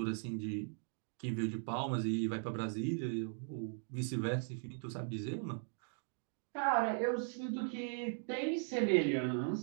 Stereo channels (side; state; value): left; silent; 52 dB below the other